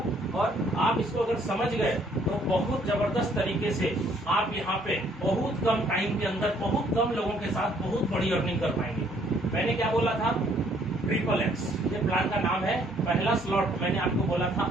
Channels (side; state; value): both; normal; correlation 0.64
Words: और आप इसको अगर समझ गए तो बहुत जबरदस्त तरीके से आप यहाँ पे बहुत कम टाइम के अंदर बहुत कम लोगों के साथ बहुत बड़ी अर्निंग कर पाएंगे। मैंने क्या बोला था? SSS, ये प्लान का नाम है। पहला स्लॉट मैंने आपको बोला था